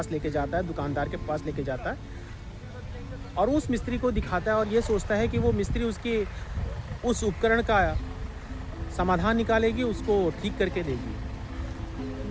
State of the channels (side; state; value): both; identical; correlation 1.00